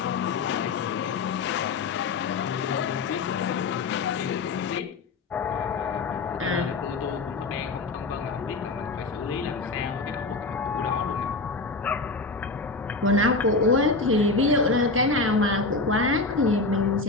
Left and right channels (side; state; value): right; quieter; 3.7 dB